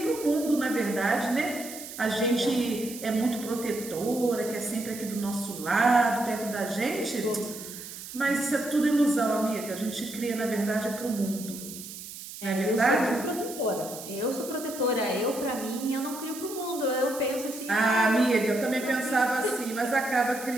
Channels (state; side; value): noise; right; hiss, 12 dB below the sound